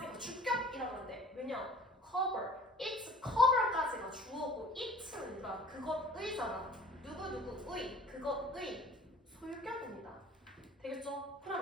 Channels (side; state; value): both; normal; correlation 0.48